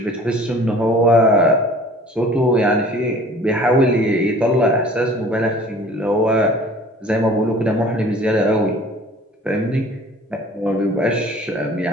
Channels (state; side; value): normal; both; correlation 0.48